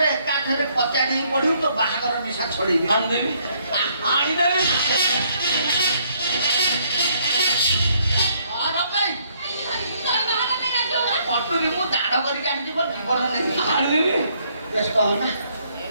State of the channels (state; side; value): inverted; both; correlation -0.68